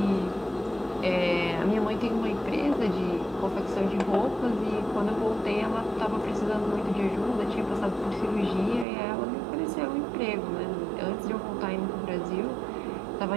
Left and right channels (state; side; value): drops out; left; at 8.8 s